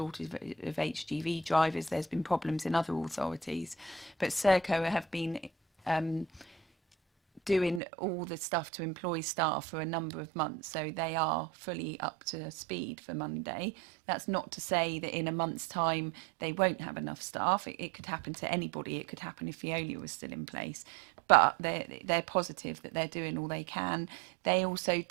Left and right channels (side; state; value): left; drops out; at 7.8 s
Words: of HGV drivers. There's been problems in other authorities, but Serco have been doing all the stuff to employ staff for a number of months, so they are fully up to speed for Monday. That's not to say that in a month's time they won't have enough staff. It could happen to anybody. It could happen if Veolia was still in place, but they're positive that they're doing all they can. They also